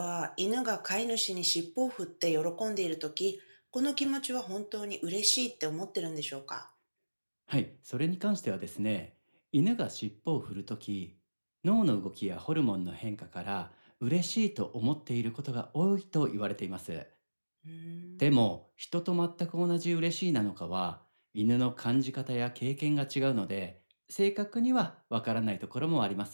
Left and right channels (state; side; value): inverted; both; correlation -1.00